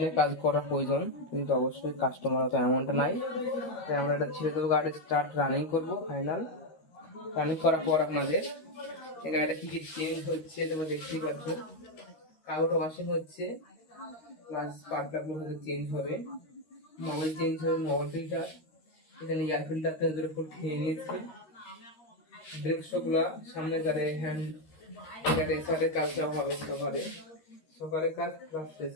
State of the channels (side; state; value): right; late; 13 ms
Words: কাজ করার প্রয়োজন, কিন্তু অবশ্যই কাস্টমার অত এমনটা নাই। তাই আমরা এটা ছেড়ে দেবো, গাড়ি স্টার্ট রানিং করবো। ফাইনাল রানিং করার পর আপনাদের এই গাড়িটা কি কি চেঞ্জ হচ্ছে তোমরা দেখতেই পাচ্ছ। কাগজটা ওয়াশিং হচ্ছে, প্লাস স্পার্ক প্লাগগুলো হয়তো চেঞ্জ হবে, মোবাইল চেঞ্জ হবে, মোবাইল ফিল্টার, এখানে এয়ার ফিল্টারটা ওদের উপর খেয়ে নিয়েছে। ব্রেক শোগুলা সামনে গাড়ি হ্যান্ড রেসারের কাজটাও হবে, সকারের কাজ প্লাস